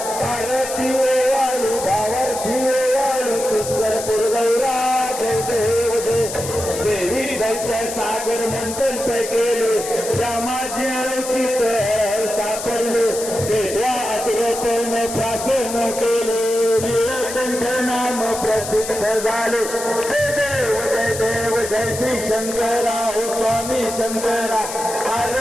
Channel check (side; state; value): left; noise; hiss, 8 dB below the sound